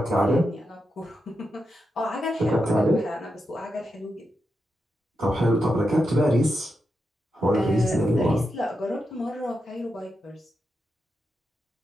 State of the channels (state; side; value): normal; both; correlation 0.87